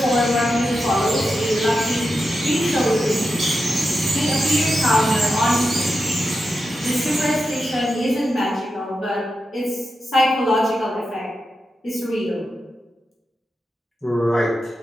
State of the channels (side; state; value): both; normal; correlation 0.89